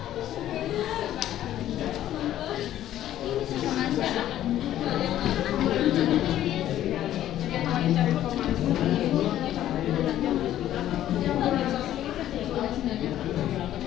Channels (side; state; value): right; quieter; 12.4 dB